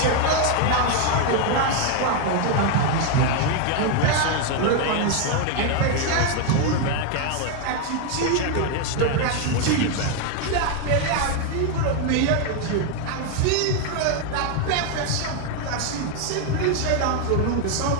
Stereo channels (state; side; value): different; both; correlation 0.01